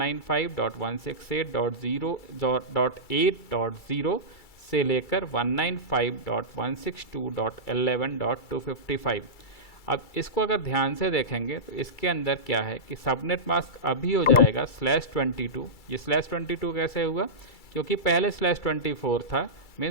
से लेकर 195.162.11.255। अब इसको अगर ध्यान से देखेंगे तो इसके अंदर क्या है कि सबनेट मास्क अभी हो जाएगा /22। ये /22 कैसे हुआ, क्योंकि पहले /24 था,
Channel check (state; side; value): late; right; 2.3 ms